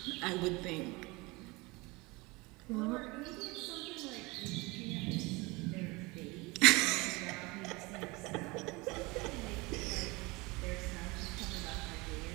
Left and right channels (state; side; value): quieter; left; 24.6 dB